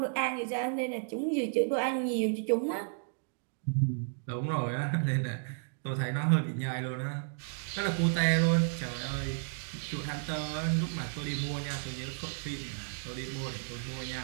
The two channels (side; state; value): left; silent; digital silence